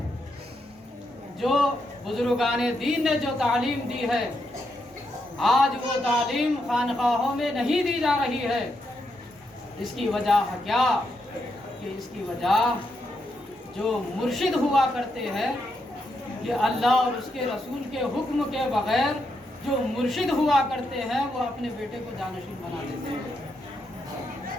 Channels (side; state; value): both; normal; correlation 0.81